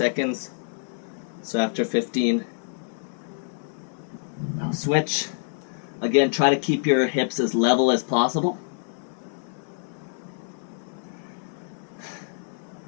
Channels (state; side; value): silent; right; digital silence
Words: So after 15, I'll switch. Again, try to keep your hips as level as possible.